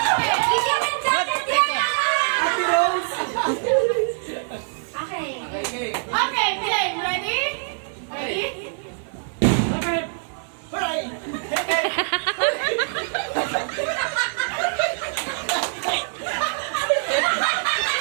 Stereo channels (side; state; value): left; silent; digital silence